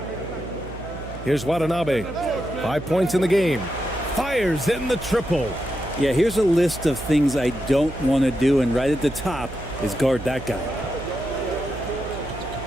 Here's Watanabe. 5 points in the game. Fires in the triple. Yeah, here's a list of things I don't want to do, and right at the top is guard that guy.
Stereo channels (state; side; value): noise; right; hum, 12 dB below the sound